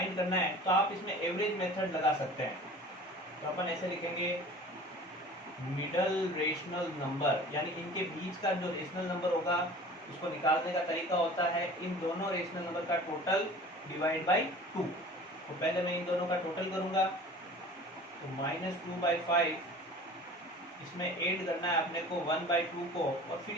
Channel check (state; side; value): normal; both; correlation 0.42